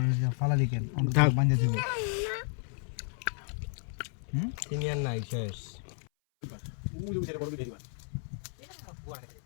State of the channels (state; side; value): silent; right; 56 dB below the other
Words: ফালা লিখেন বান্ধে দিব তিনি আর নাই শেষ